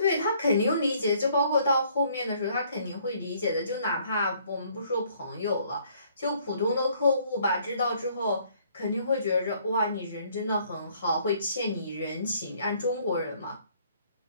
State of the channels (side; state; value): both; inverted; correlation -0.63